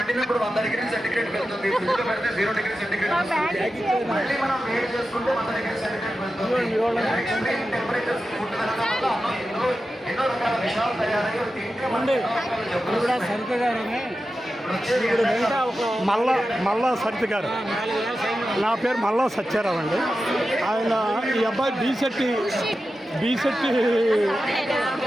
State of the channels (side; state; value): both; normal; correlation 0.92